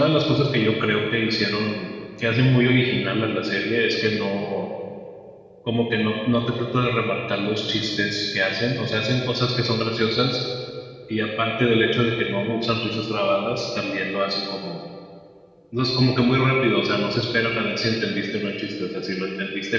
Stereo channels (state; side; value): identical; both; correlation 1.00